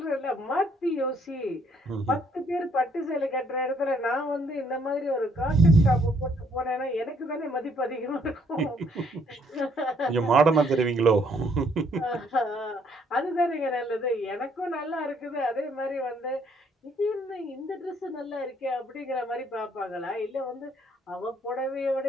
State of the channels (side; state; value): both; normal; correlation 0.67